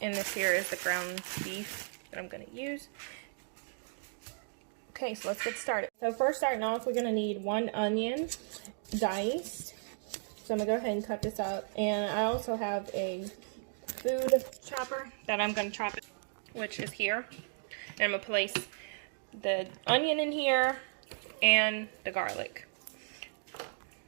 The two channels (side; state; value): left; silent; digital silence